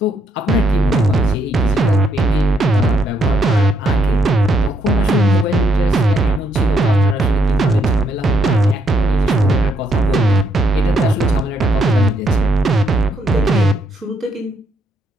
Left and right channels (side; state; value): both; normal; correlation 0.75